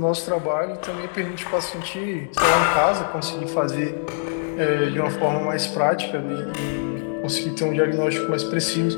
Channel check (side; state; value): right; silent; digital silence